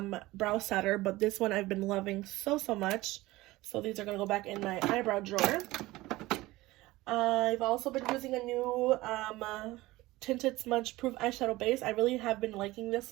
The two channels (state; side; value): quieter; left; 18.9 dB